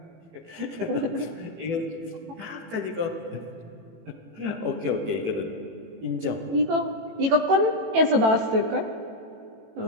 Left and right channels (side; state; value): left; late; 18 ms